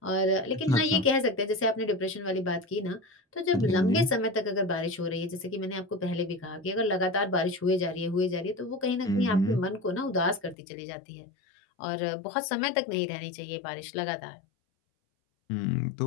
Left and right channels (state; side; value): drops out; right; at 10.6 s